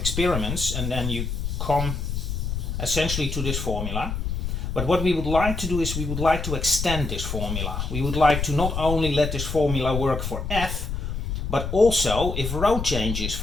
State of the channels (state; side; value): noise; left; rumble, 3 dB below the sound